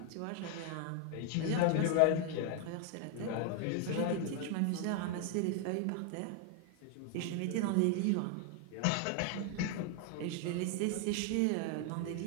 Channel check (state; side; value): different; both; correlation 0.00